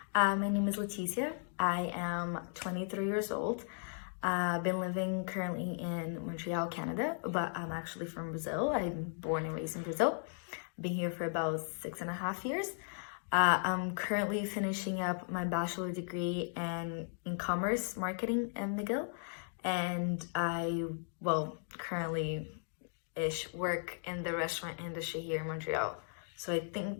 my name is Leticia. I am 23 years old. I've been living currently in Montreal, Canada, but I'm actually from Brazil. I'm born and raised in Brazil. Been here for about 6.5 years. I'm currently finishing up my bachelor degree in commerce marketing in McGill, and currently work in the restaurant industry here in Montreal. So I think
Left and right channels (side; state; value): right; silent; digital silence